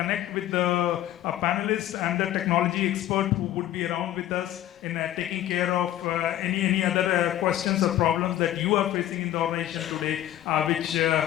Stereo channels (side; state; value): right; quieter; 12.9 dB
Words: with the panelists and the technology expert who would be around with us in taking care of any other questions or problems that you are facing in the organization today, which